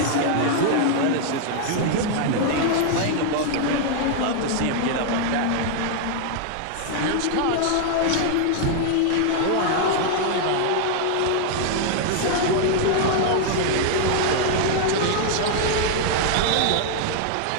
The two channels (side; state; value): both; different; correlation 0.00